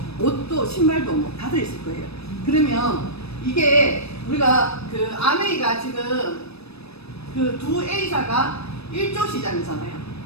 옷도, 신발도 뭐 다 들어있을 거예요. 그러면 이게 우리가 그 아메이가 지금 그 두 A사가 1조 시장이잖아요.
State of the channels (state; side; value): late; right; 0.78 ms